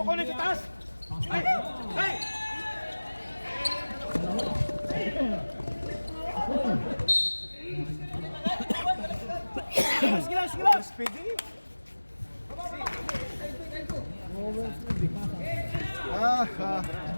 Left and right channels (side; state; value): both; inverted; correlation -1.00